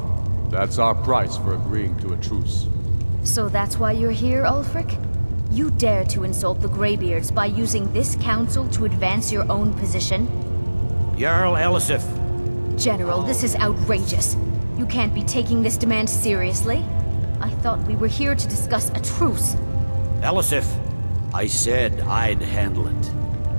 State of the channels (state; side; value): inverted; both; correlation -1.00